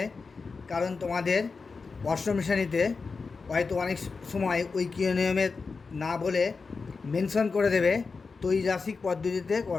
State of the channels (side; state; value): right; quieter; 4.6 dB